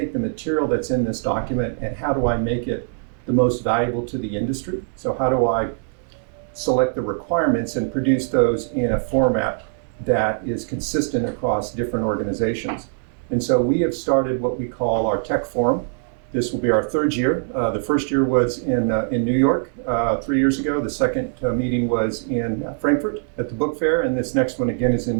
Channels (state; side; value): silent; left; digital silence